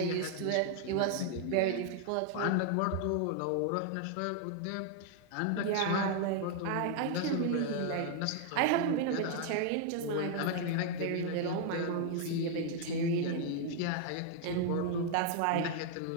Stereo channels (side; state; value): both; different; correlation 0.00